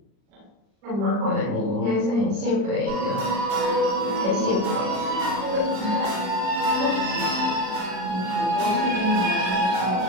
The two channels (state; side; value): late; left; 38 ms